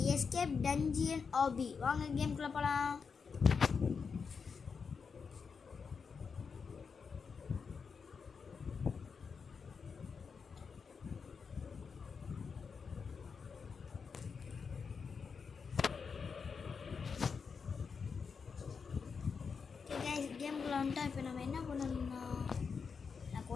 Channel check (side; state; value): right; quieter; 5.6 dB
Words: எஸ்கேப் டஞ்சியன் ஆபி. வாங்க கேம்குள்ளே போகலாம். கேம்குள்ளே வந்துட்டா இப்போ நம்ம என்ன பண்ணணும்னா எனக்கு